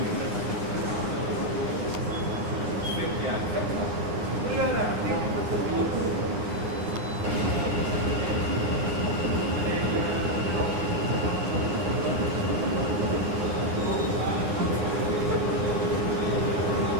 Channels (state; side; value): late; left; 9.6 ms